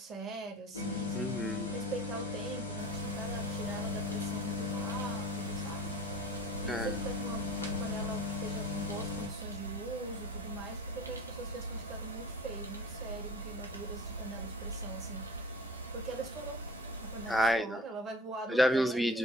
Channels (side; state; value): both; normal; correlation 0.40